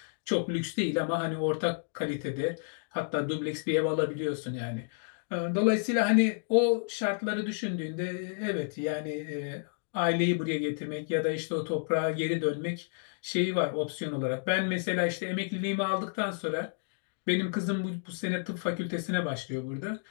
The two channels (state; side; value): silent; right; digital silence